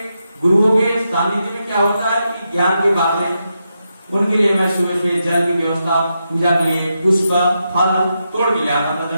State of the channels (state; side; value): inverted; both; correlation -0.85